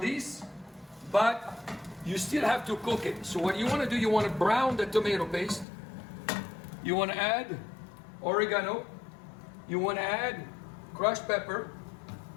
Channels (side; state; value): right; drops out; at 5.7 s